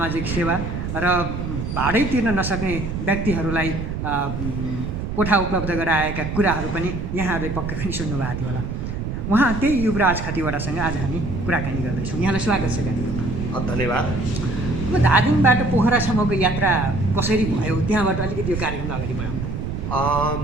सेवा र भाडै तिर्न नसक्ने व्यक्तिहरूलाई कोठा उपलब्ध गराएका कुराहरू पनि यहाँहरूले पक्कै पनि सुन्नुभएको थियो होला। उहाँ त्यही युवराज खतिवडासँग आज हामी कुराकानी गर्दैछौँ। यहाँलाई स्वागत छ कार्यक्रममा। धन्यवाद। अब धादिङबाट पोखरासम्मको यात्रा कसरी भयो, त्यहाँबाट अलिकति यो कार्यक्रमलाई अगाडि बढाउनु।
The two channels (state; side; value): noise; right; rumble, 4 dB below the sound